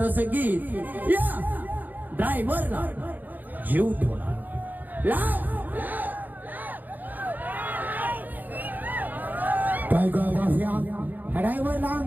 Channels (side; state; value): left; late; 0.085 ms